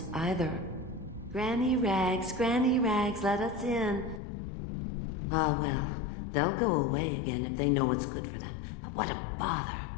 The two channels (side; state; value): right; drops out; at 4.2 s